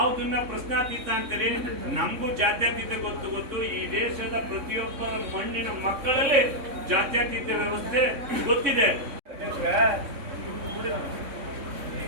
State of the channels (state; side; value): late; left; 3.6 ms